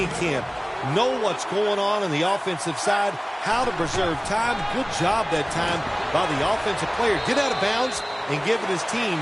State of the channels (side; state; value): both; identical; correlation 1.00